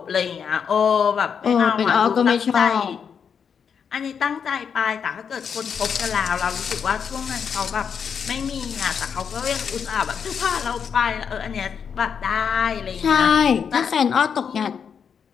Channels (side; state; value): right; quieter; 7.0 dB